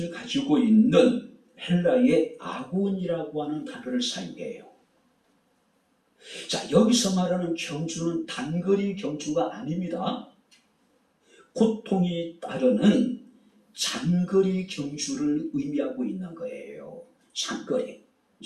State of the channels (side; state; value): both; identical; correlation 1.00